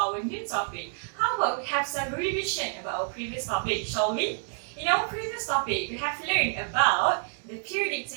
new topic, how about we have some revision about our previous topic, shall we? In our previous topic, we have learned about the periodic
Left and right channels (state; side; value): silent; left; 59 dB below the other